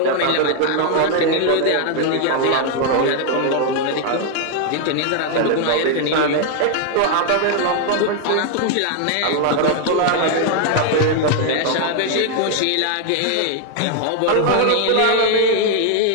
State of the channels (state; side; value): different; both; correlation 0.00